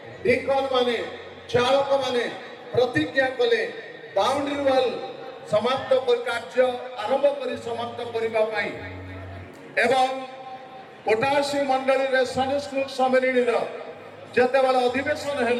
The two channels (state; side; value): identical; both; correlation 1.00